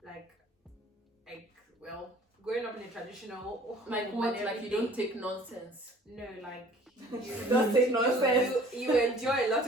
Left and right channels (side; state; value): both; normal; correlation 0.51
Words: Growing up in a traditional home Like what? and Like you don't everything. take nonsense. No, Don't take nonsense. You enjoy a lot